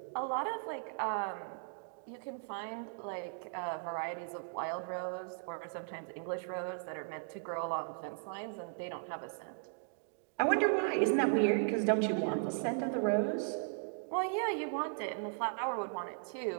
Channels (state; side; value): silent; left; digital silence